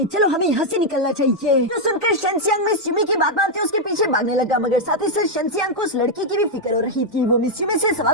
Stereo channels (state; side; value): normal; both; correlation -0.01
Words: चलो हमें यहाँ से निकलना चाहिए। तो सुनकर शेंजियांग मिस यूमी की बात मानते उसके पीछे भागने लगा, मगर साथ ही साथ शेंजियांग को उस लड़की की भी फिक्र हो रही थी। वो मिस यूमी से